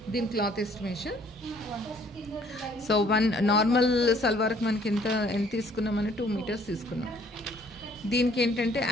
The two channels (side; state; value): both; normal; correlation 0.60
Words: దీని cloth estimation. So one normal సల్వార్కి మనకి ఎంత తీసుకున్నామని 2 మీటర్స్ తీసుకున్నాం. దీనికి ఏంటంటే